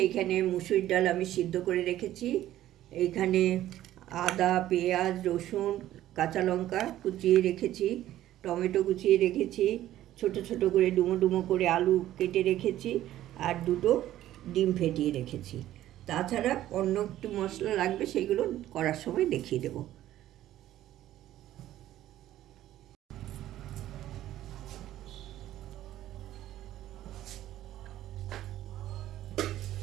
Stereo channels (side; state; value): left; quieter; 13.4 dB